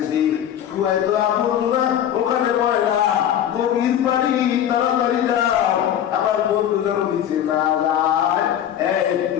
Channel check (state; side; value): quieter; right; 10.3 dB